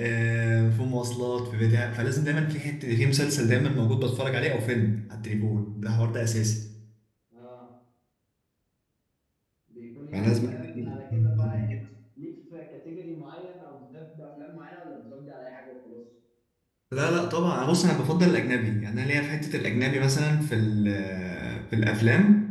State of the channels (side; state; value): both; identical; correlation 1.00